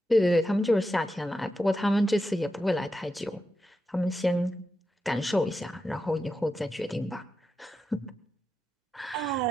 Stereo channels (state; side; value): normal; both; correlation 0.88